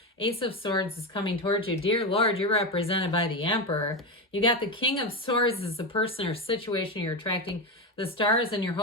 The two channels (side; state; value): both; normal; correlation 0.14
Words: Ace of Swords is coming towards you. Dear Lord, you're represented by the Emperor. You got the King of Swords as the person or situation you're attracting. The stars and your